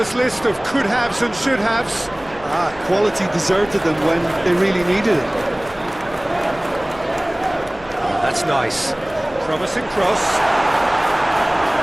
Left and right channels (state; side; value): noise; right; rumble, 22 dB below the sound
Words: list of could-haves and should-haves. Quality deserted them when they really needed it. Oh, that's nice. Promising cross.